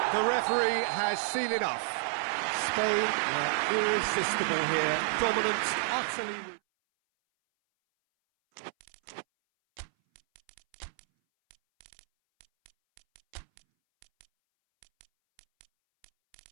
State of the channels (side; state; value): left; silent; 57 dB below the other